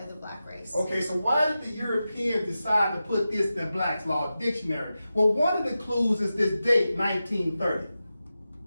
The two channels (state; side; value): inverted; both; correlation -0.93